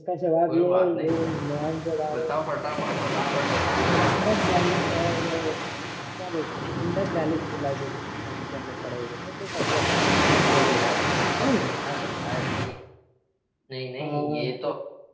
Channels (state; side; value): identical; both; correlation 1.00